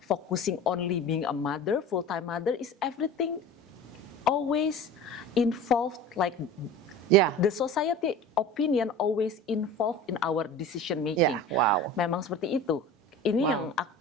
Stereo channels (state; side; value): normal; both; correlation 0.36